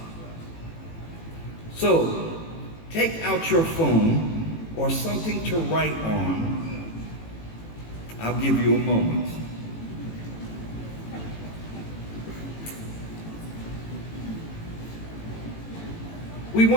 So, take out your phone or something to write on. I'll give you a moment. We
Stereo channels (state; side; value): late; right; 18 ms